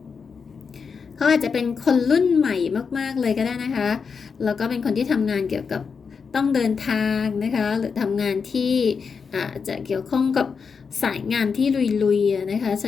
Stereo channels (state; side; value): quieter; right; 5.7 dB